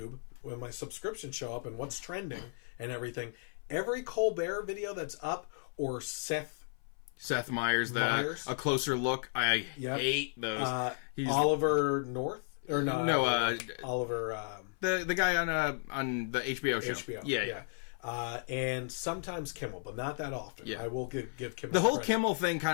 when my subscriptions show up and what's trending and everything, every Colbert video that's up, or Seth Meyers, A Closer Look. I hate those. Oliver North? Or no, Oliver... the guy on the HBO show. HBO. Yeah. And sometimes Kimmel, but not that often. Yeah. I will give Kimmel the whole credit. Kimmel thing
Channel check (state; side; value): silent; right; 55 dB below the other